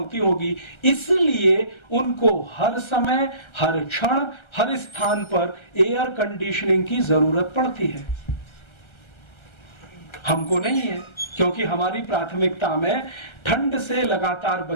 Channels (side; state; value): right; late; 1.3 ms